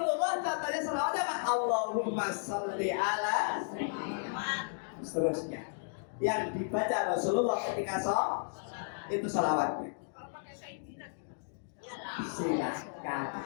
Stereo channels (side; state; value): right; silent; digital silence